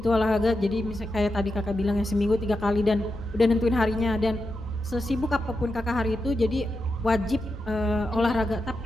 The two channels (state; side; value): normal; both; correlation 0.88